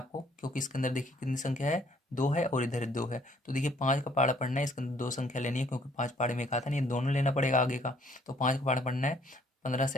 क्योंकि इसके अंदर देखिए कितनी संख्या है, 2 है और इधर 2 है। तो देखिए 5 का पहाड़ा पढ़ना है, इसके अंदर 2 संख्या लेनी है, क्योंकि 5 पहाड़े में एक आता नहीं, ये दोनों लेना पड़ेगा आगे का। तो 5 का पहाड़ा पढ़ना है, 15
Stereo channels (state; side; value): normal; both; correlation 0.63